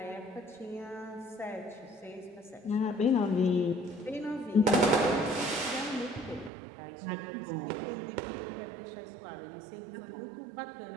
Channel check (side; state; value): left; drops out; at 6.5 s